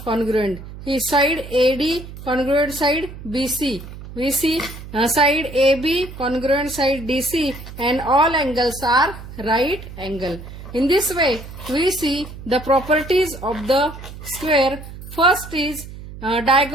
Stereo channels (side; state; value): right; noise; hum, 13 dB below the sound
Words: congruent. His side AD congruent side BC. We see side AB congruent side DC and all angles are right angle. In this way, we see the properties of the square. First is